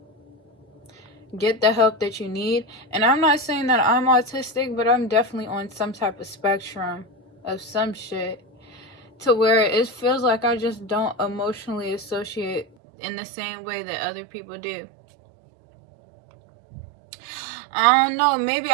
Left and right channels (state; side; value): drops out; left; at 12.7 s